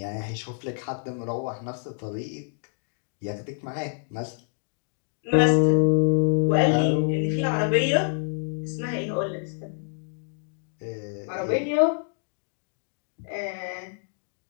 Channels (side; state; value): right; silent; 57 dB below the other